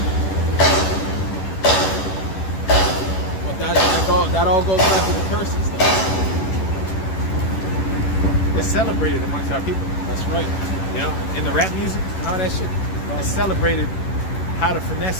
But that all goes back to the curses though. It's celebrated amongst our people. That's right. You know, in the rap music and all that shit. It's celebrated how to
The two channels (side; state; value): right; late; 11 ms